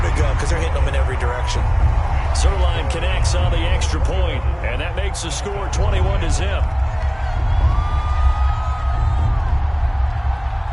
to go because they're hitting them in every direction. Zerline connects on the extra point, and that makes the score 21-0.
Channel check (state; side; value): identical; both; correlation 1.00